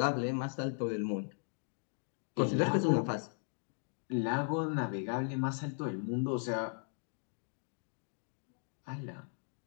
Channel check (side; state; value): right; silent; 53 dB below the other